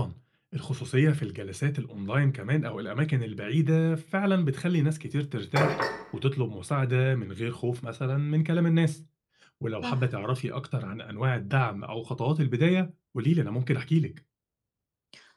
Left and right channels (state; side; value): identical; both; correlation 1.00